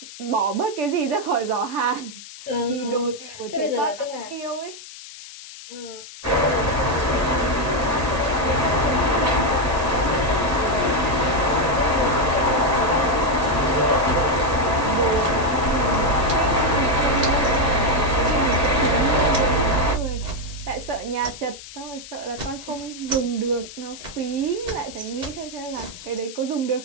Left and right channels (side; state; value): left; noise; hiss, 15 dB below the sound